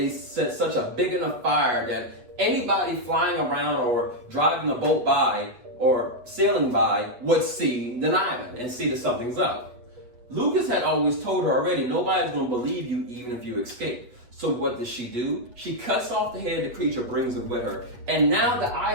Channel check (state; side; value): late; left; 8.2 ms